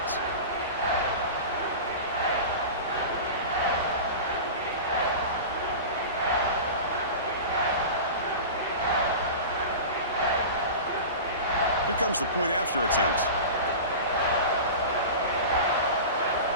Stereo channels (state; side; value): inverted; both; correlation -0.30